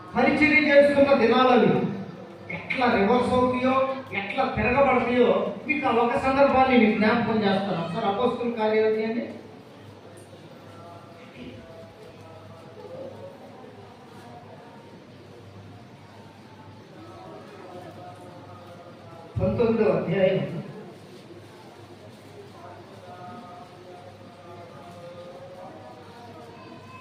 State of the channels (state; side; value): identical; both; correlation 1.00